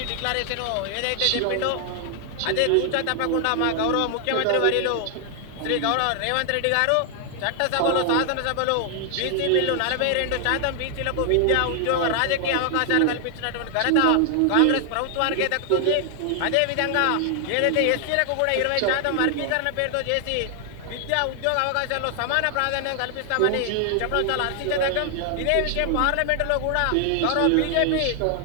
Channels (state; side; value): different; both; correlation 0.00